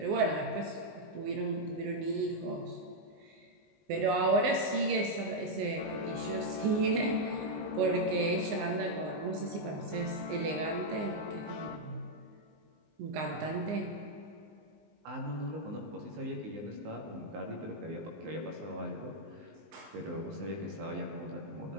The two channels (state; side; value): late; left; 19 ms